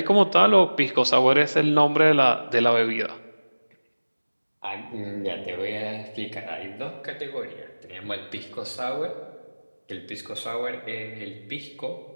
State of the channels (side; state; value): both; inverted; correlation -1.00